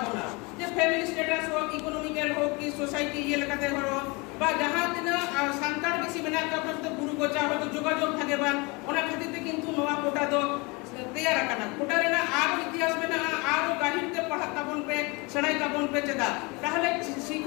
না যে ফ্যামিলি স্ট্যাটাস হোক ইকোনমিক্যাল হোক কি সোসাইটি ইয়ে লেখাতে হলো বা যাহা দিন সান্তার বেশি মেনা কাপড় তো গুরু গোচা হয়তো যোগাযোগ থাকে বা ওনা খাতিতে কিন্তু নোয়া কোটা তো तैयार रखना कोटा रेना आरो इतिहास में ना आरो गाहिरते पढ़ा ताबन पे सड़ाई ताबन पे चेदा ताहले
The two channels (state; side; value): quieter; right; 27.4 dB